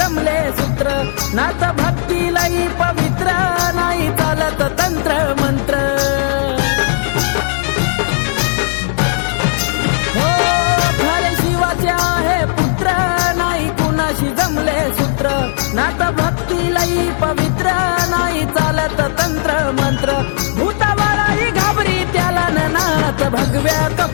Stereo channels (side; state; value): right; silent; digital silence